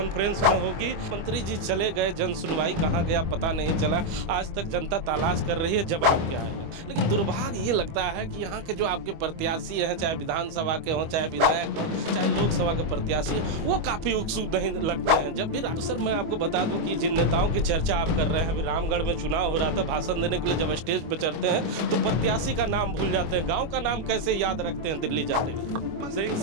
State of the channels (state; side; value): late; left; 25 ms